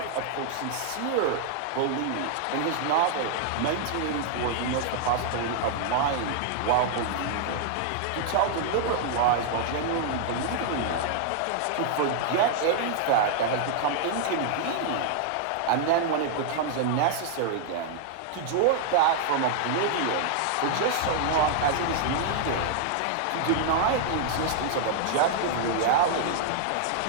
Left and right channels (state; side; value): different; both; correlation -0.01